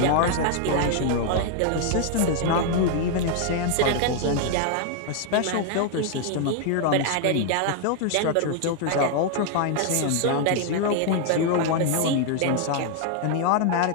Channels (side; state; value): both; different; correlation 0.00